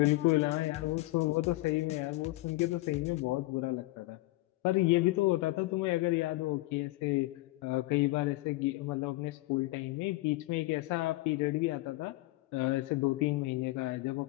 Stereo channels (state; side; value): quieter; right; 19.8 dB